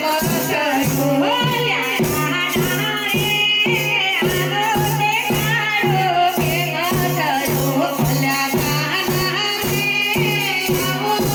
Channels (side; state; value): both; identical; correlation 1.00